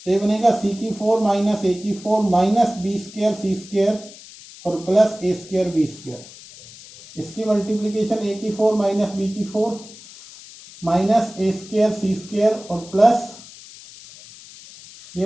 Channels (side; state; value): left; noise; hiss, 18 dB below the sound